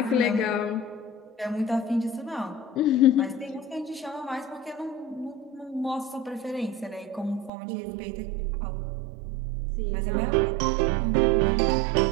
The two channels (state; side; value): drops out; left; at 7.5 s